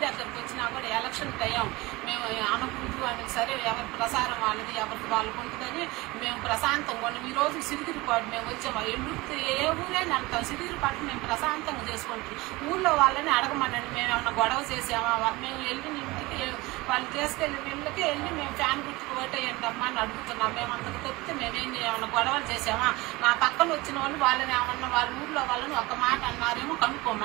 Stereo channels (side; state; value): left; quieter; 21.8 dB